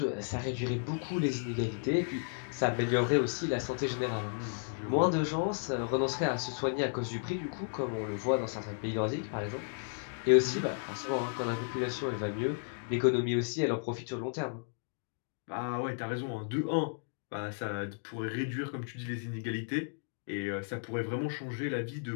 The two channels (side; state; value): right; silent; digital silence